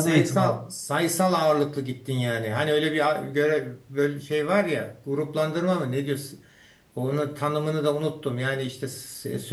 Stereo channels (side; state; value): both; identical; correlation 1.00